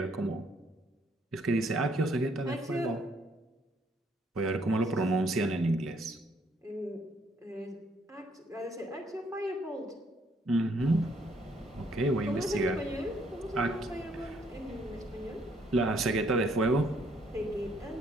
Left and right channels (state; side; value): normal; both; correlation 0.68